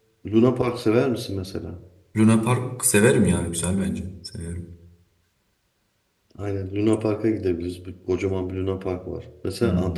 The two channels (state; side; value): identical; both; correlation 1.00